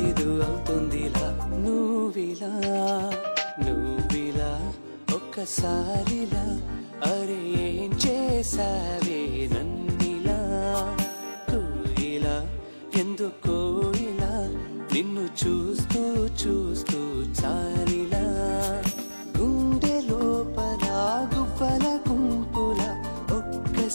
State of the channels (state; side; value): inverted; both; correlation -1.00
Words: అవుతుందిలా నువ్విలా నువ్విలా ఒక్కసారిలా అరే ఏం చేసావే నన్నిలా కోయిలా ఎందుకో ఇలా నిన్ను చూస్తూ చూస్తూ చాలిలా గుండె లోపల గువ్వల గుంపుల